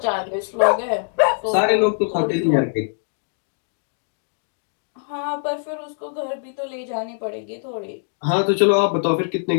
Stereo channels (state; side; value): silent; right; digital silence